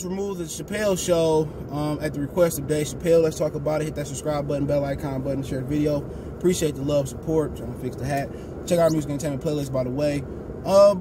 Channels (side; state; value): both; identical; correlation 1.00